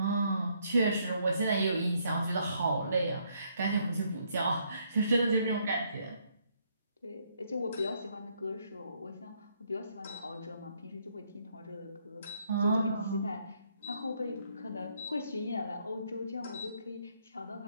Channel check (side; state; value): both; inverted; correlation -0.71